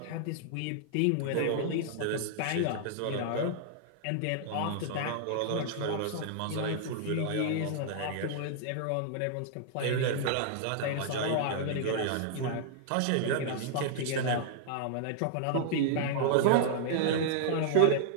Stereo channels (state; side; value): different; both; correlation -0.01